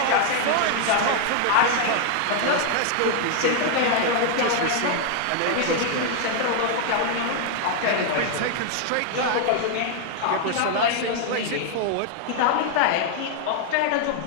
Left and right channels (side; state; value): both; different; correlation 0.00